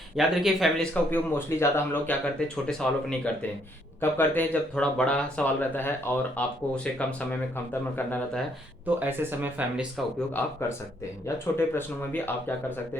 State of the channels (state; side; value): normal; both; correlation 0.69